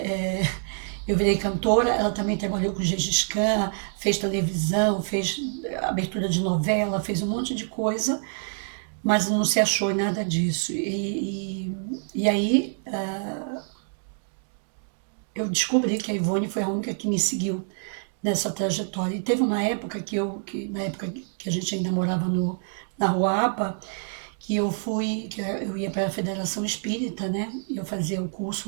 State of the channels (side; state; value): left; silent; digital silence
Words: eu virei cantora, ela também trabalhou com Gengis Khan, fez televisão, fez abertura de novela, fez um monte de coisa, mas não se achou em nada disso. E aí eu descobri que a Ivone foi a única que me seguiu nessa trajetória. E teve uma época que na época que a gente ainda morava na Rua APA, que eu ia para a Federação Espírita, né? Eu fazia o